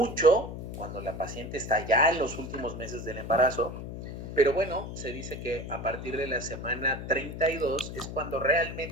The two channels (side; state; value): left; noise; hum, 8 dB below the sound